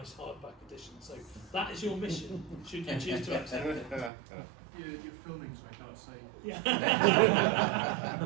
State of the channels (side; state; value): left; drops out; at 4.1 s